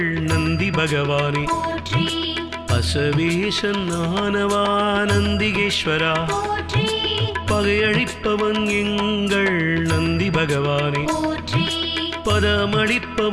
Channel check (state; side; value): identical; both; correlation 1.00